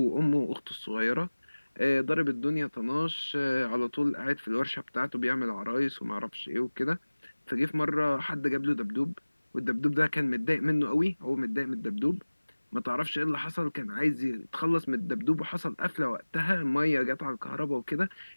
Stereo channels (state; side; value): inverted; both; correlation -1.00